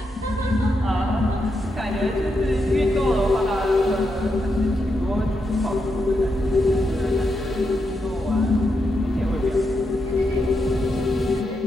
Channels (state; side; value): normal; both; correlation 0.84